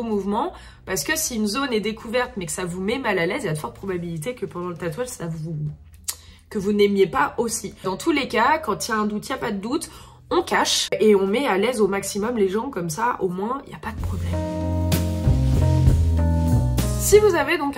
mouvements. Parce que si une zone est découverte mais que ça vous met mal à l'aise, il y a de fortes probabilités que pendant le tatouage, que vous n'aimiez pas aussi. Dans tous les cas, quand il y a un doute, il n'y a pas de doute. On cache et on met à l'aise au maximum les gens, comme ça au moins il n'y a pas de problème. Si vous avez donc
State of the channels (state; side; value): identical; both; correlation 1.00